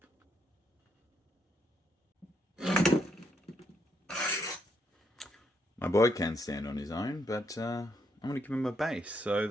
My boy can stand on his own, but I'm going to give him a base, so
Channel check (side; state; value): both; normal; correlation 0.76